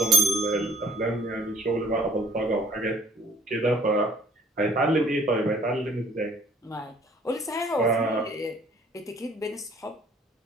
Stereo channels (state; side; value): normal; both; correlation 0.53